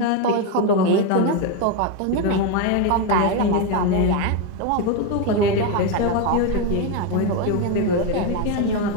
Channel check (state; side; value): different; both; correlation 0.03